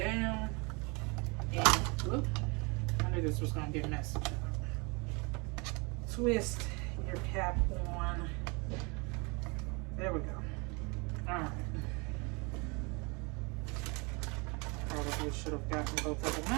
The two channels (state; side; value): quieter; left; 29.8 dB